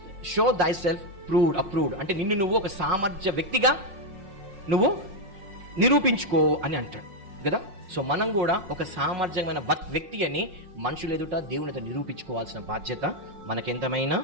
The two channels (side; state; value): left; late; 5.4 ms